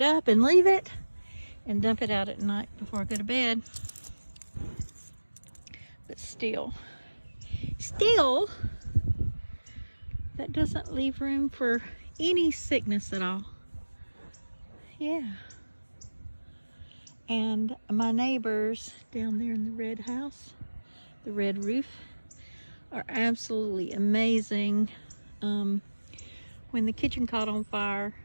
up and leave it and dump it out at night before I go to bed. But still, that doesn't leave room for any sickness at all. Yeah. And my neighbors down there in the red house, the red roof, are absolutely amazing. When the kitchen caught on fire,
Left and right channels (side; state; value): both; inverted; correlation -1.00